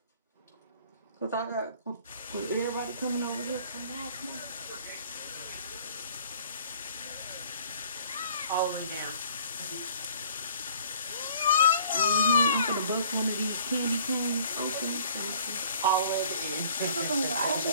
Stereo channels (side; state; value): both; inverted; correlation -0.54